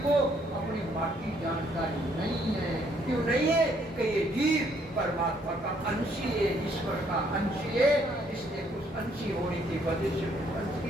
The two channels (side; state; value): both; normal; correlation 0.68